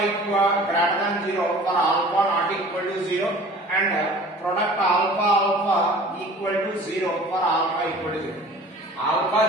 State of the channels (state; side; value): normal; both; correlation 0.45